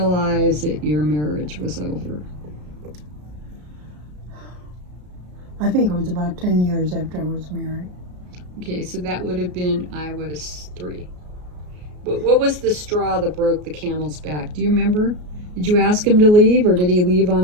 that your marriage was over? I think it was about 10 years after I was married. Okay, so that would have been, I was 3. What was the straw that broke the camel's back? Do you remember? Did you ask him to leave, or did he leave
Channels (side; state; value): left; late; 33 ms